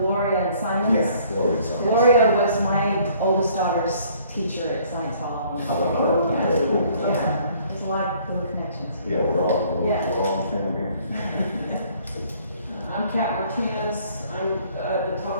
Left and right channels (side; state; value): both; inverted; correlation -0.59